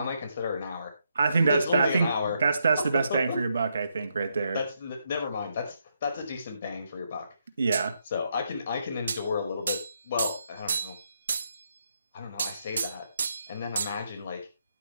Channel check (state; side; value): inverted; both; correlation -0.79